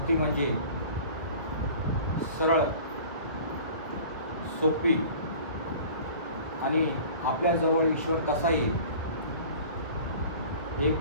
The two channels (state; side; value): inverted; both; correlation -0.43